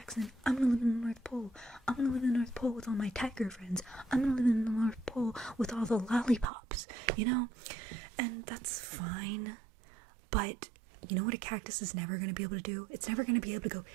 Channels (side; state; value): left; drops out; at 6.5 s